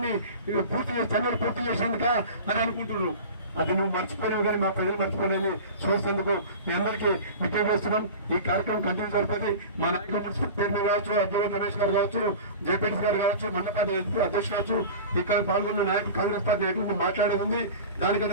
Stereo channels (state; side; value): inverted; both; correlation -0.35